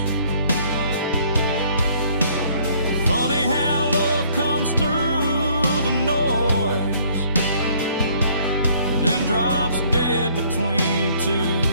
Funny how love comes through the noise, then drops dead between two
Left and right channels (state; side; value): inverted; both; correlation -0.61